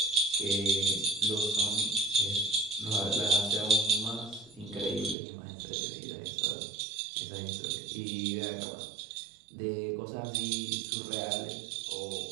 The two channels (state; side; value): drops out; left; at 5.2 s